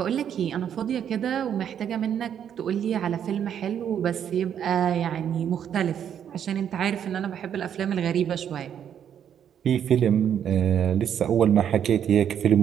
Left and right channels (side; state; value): left; quieter; 9.0 dB